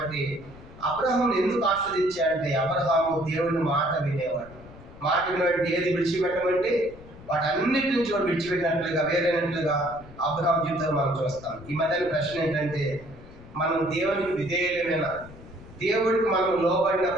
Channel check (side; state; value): left; noise; rumble, 19 dB below the sound